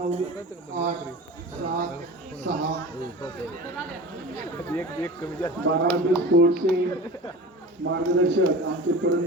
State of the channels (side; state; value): both; normal; correlation 0.35